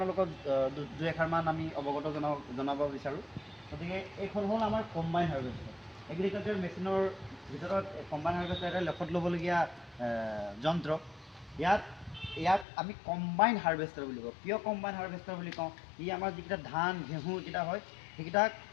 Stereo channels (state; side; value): drops out; right; at 12.7 s